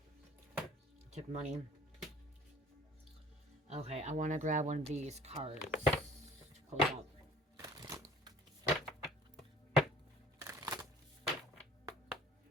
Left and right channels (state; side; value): normal; both; correlation 0.49